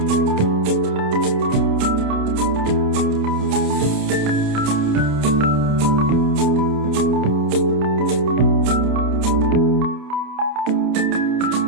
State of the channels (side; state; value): left; late; 28 ms